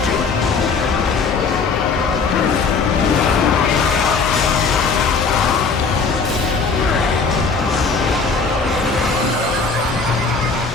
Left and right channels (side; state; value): right; quieter; 4.7 dB